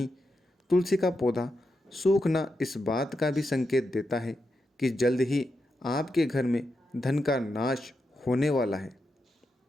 तुलसी का पौधा सूखना इस बात का भी संकेत देता है कि जल्द ही आपके घर में धन का नाश होने वाला है।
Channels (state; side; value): normal; both; correlation 0.86